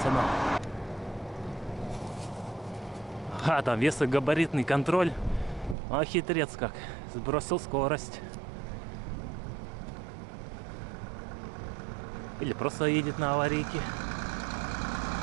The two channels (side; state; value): left; drops out; at 5.8 s